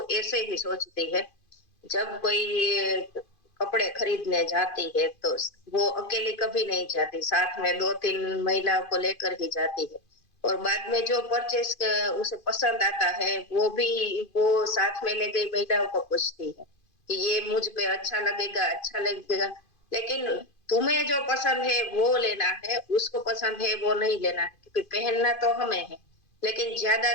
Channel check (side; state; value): right; late; 2.5 ms